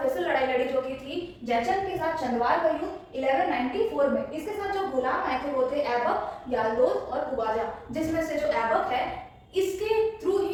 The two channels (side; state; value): both; identical; correlation 1.00